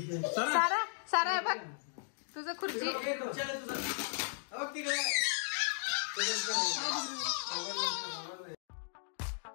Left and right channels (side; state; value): right; silent; digital silence